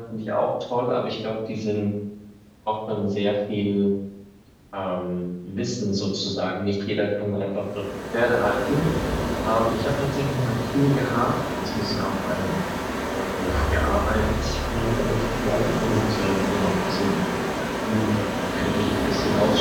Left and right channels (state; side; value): identical; both; correlation 1.00